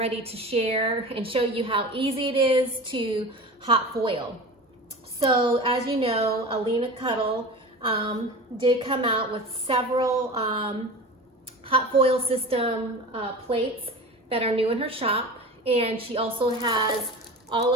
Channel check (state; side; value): normal; both; correlation 0.33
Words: to share and show you how easy it is to hot foil. So as you know, Alina did come out with several hot foil system plates that are new in her shop, and she also has all